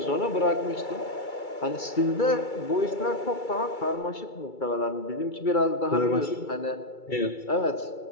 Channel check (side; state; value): right; late; 2.3 ms